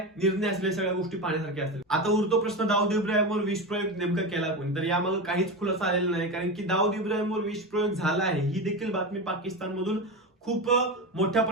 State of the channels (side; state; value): both; normal; correlation 0.20